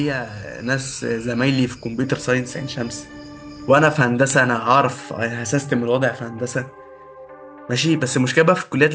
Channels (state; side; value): identical; both; correlation 1.00